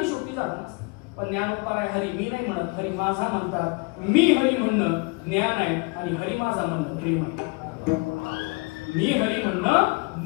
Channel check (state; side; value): quieter; right; 29.5 dB